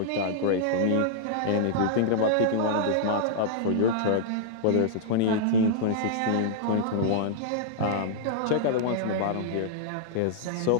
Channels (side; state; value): both; different; correlation -0.01